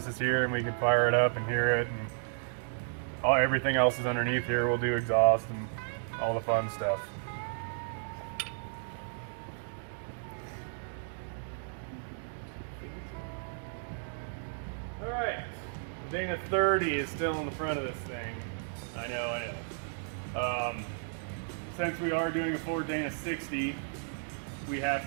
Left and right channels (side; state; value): left; silent; digital silence